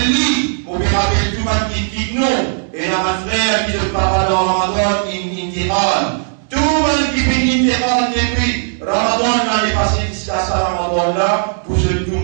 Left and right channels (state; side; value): silent; left; digital silence